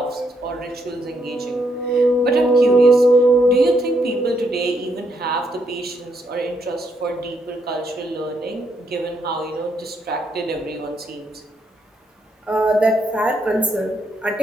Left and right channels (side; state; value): both; normal; correlation 0.76